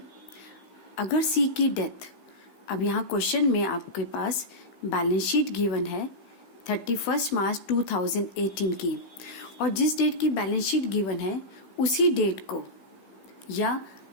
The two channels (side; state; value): right; late; 16 ms